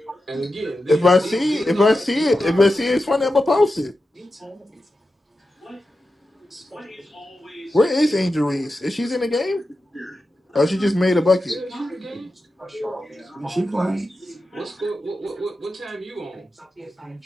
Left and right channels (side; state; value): both; normal; correlation 0.91